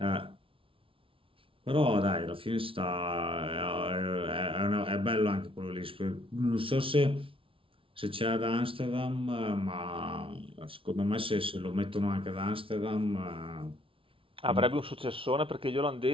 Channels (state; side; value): late; left; 0.26 ms